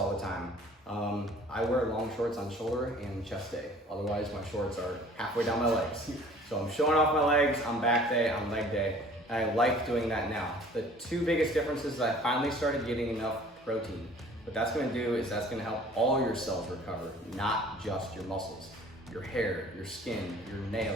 the time. I wear long shorts on shoulder and chest day. Otherwise, my shorts are halfway down my legs. So I'm showing off my legs on back day, on leg day. And I like doing that now. The 2 biggest differences is I finally started getting enough protein. What that's gonna do is that's gonna help all your cells recover, not just your muscles. Your hair, your skin, your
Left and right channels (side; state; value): both; normal; correlation 0.50